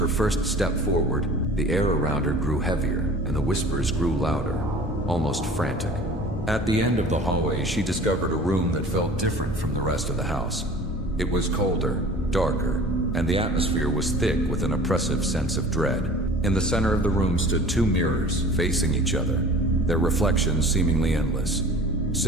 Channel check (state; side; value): normal; both; correlation 0.43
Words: first step forward, the air around her grew heavier, and the whispers grew louder, almost frantic. At the end of the hallway, she discovered a room that felt different from the rest of the house. It was colder, darker, and the atmosphere was thick with an oppressive sense of dread. In the center of the room stood two mirrors facing each other, their reflections seemingly endless.